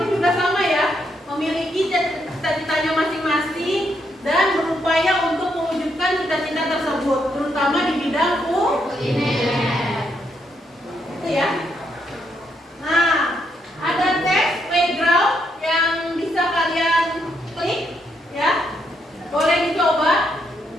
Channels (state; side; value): normal; both; correlation 0.77